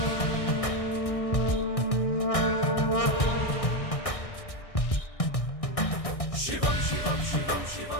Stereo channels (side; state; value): right; late; 1.6 ms